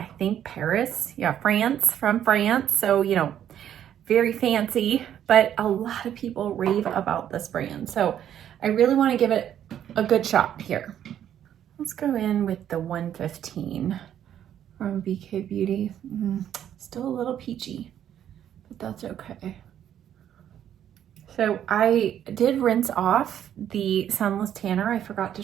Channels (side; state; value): left; quieter; 10.3 dB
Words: think, Paris. Yeah, France, from France. So, you know, very fancy, but a lot of people rave about this brand. So I really want to give it a good shot here. Let's go in with the 115 from BK Beauty. Still a little peachy, but that's okay. So I did rinse off the Sunless Tanner. I forgot to